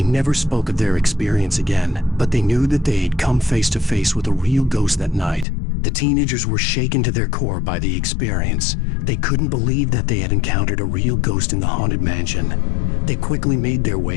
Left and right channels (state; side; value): drops out; right; at 5.5 s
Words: never spoke of their experience again, but they knew that they had come face to face with a real ghost that night. The teenagers were shaken to their core by the experience. They couldn't believe that they had encountered a real ghost in the haunted mansion. They quickly made their